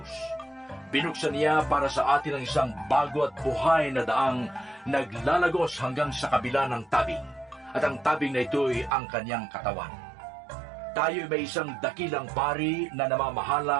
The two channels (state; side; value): drops out; left; at 8.9 s